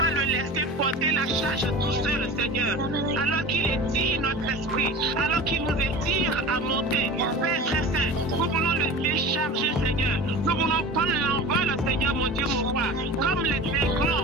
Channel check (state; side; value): normal; both; correlation 0.34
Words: le laisser porter la charge tout seul, Seigneur. Alors qu'il étire notre esprit, alors qu'il nous étire à monter. Père très saint, nous voulons le décharger, Seigneur. Nous voulons prendre l'envol, Seigneur, mon Dieu, mon roi. Comme les